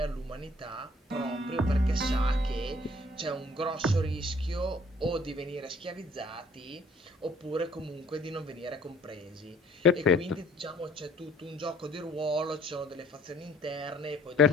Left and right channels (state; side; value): normal; both; correlation 0.57